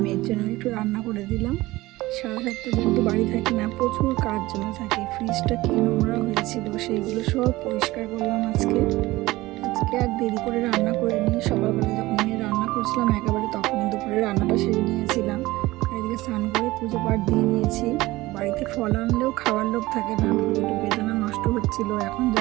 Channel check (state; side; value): quieter; left; 19.0 dB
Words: মেয়ের জন্য একটু রান্না করে দিলাম। সারা সপ্তাহ যেহেতু বাড়ি থাকি না, প্রচুর কাজ জমে থাকে। ফ্রিজটা কি নোংরা হয়েছিল সেইগুলো সব পরিষ্কার করলাম আজকে। আর দেরি করে রান্না করে নিই। সকালবেলা যখন আমি রান্না করছিলাম একেবারে তখনই দুপুরে রান্নাটা সেরে নিয়েছিলাম। আর এদিকে স্নান করে পুজো পাঠ দিয়ে নিয়েছি। বাড়িতে ফল আনলেও খাওয়ার লোক থাকে না, একটু বেদানা নষ্ট হচ্ছিল। এখন যা